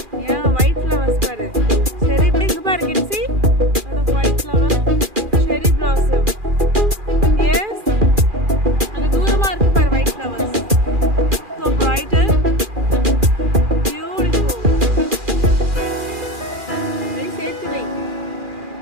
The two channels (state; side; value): late; left; 2.4 ms